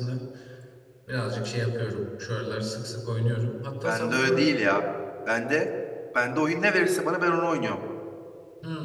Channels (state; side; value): identical; both; correlation 1.00